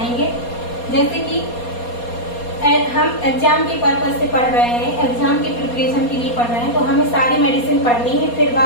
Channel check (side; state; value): right; late; 4.2 ms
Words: जैसे कि हम एग्जाम के पर्पज से पढ़ रहे हैं, एग्जाम की प्रिपरेशन के लिए पढ़ रहे हैं, तो हमें सारी मेडिसिन पढ़नी है, फिर